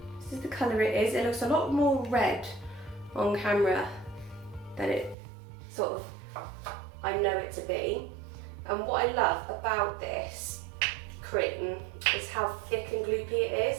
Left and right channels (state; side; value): drops out; left; at 5.2 s